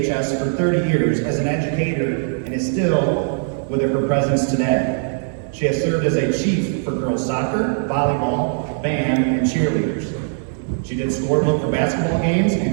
for 30 years as an educator and is still with her presence today. She has served as a chief for girls soccer, volleyball, band, and cheerleaders. She did scorebook for basketball games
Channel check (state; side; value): silent; left; digital silence